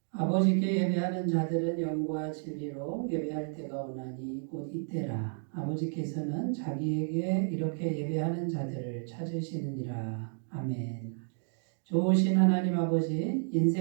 아버지께 예배하는 자들은 영과 진리로 예배할 때가 오나니 곧 이때라. 아버지께서는 자기에게 이렇게 예배하는 자들을 찾으시느니라. 아멘. 좋으신 하나님 아버지,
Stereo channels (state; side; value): silent; left; 57 dB below the other